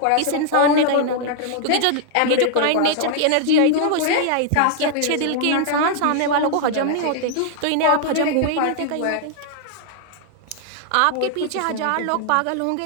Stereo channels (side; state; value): both; different; correlation -0.01